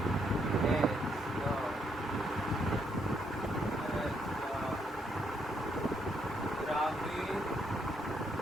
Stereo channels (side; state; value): both; normal; correlation 0.74